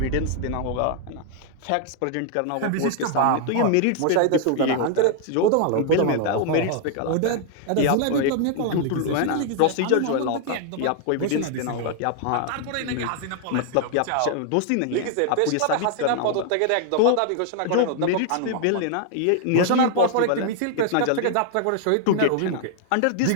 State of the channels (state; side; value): different; both; correlation 0.00